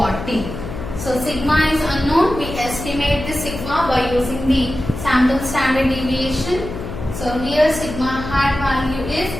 So sigma is unknown, we estimate the sigma by using the sample standard deviation. So here sigma hat value is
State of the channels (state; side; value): noise; left; hum, 9 dB below the sound